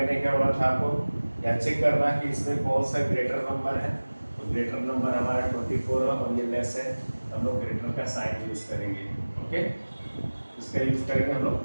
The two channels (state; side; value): inverted; both; correlation -1.00